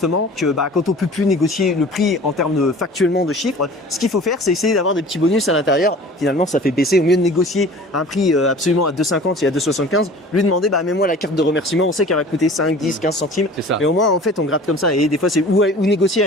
que quand on peut plus négocier le prix en termes de factuellement de chiffres, ce qu'il faut faire, c'est essayer d'avoir des petits bonus à l'intérieur. Finalement, ça fait baisser. Au mieux de négocier un prix absolument à 2,50 et à 2,75, lui demander, mets-moi la carte de remerciement. On sait qu'elle va coûter 5, 10, 15 centimes. Mais au moins, en fait, on gratte comme ça. Et des fois, c'est ou négocier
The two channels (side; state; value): both; normal; correlation 0.43